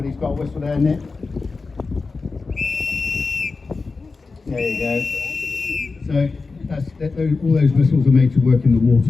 got a whistle there, Nick. There you go. So all those whistles are made to work in the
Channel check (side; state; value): right; quieter; 4.1 dB